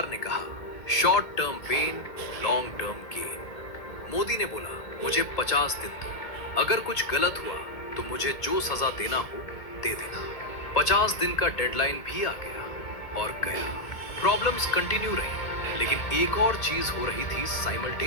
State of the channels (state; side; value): late; right; 1.8 ms